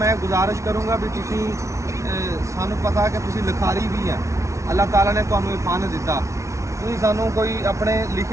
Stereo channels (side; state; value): left; late; 0.14 ms